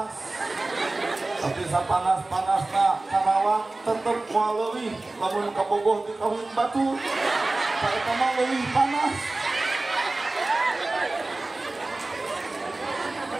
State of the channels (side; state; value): left; quieter; 3.0 dB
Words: Tapi sapanas-panasna Karawang tetep moal leuwih lamun ka Bogoh di Kawin Batu. Eta mah leuwih panas.